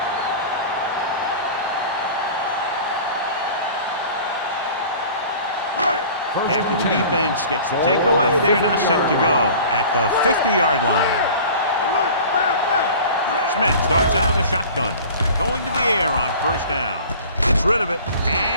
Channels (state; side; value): inverted; both; correlation -0.42